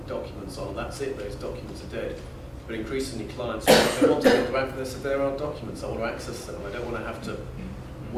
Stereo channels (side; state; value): both; identical; correlation 1.00